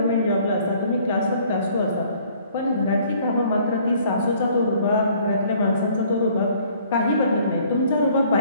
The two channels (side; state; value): both; inverted; correlation -0.58